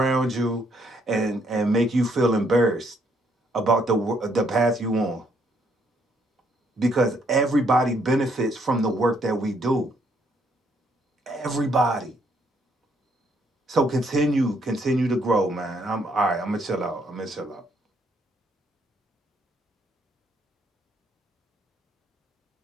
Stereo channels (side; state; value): both; normal; correlation 0.70